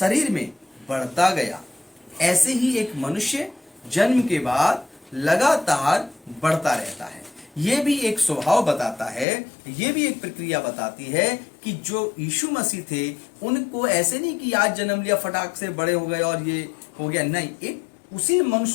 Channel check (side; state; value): right; drops out; at 9.2 s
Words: में बढ़ता गया। ऐसे ही एक मनुष्य जन्म के बाद लगातार बढ़ता रहता है। ये भी एक स्वभाव बताता है, ये भी एक प्रक्रिया बताती है कि जो यीशु मसीह थे उनको ऐसे नहीं कि आज जन्म लिया फटाक से बड़े हो गए और ये हो गया, नहीं, एक उसी मनुष्य